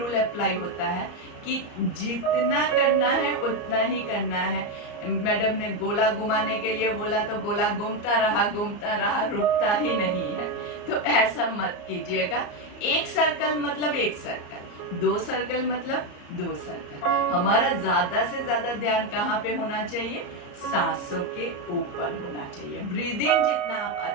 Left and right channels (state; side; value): late; right; 34 ms